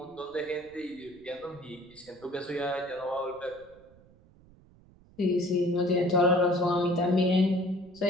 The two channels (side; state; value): right; noise; rumble, 26 dB below the sound